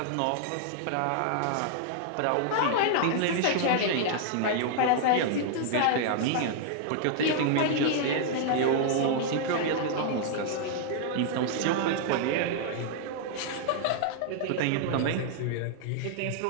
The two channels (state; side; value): different; both; correlation -0.01